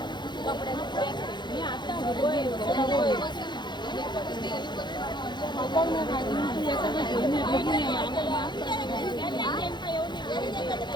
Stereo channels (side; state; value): right; late; 0.21 ms